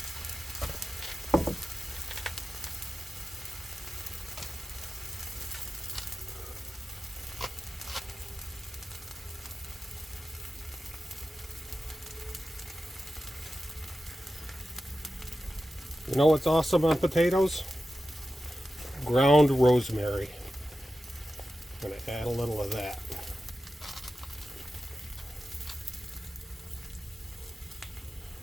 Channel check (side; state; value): both; normal; correlation 0.93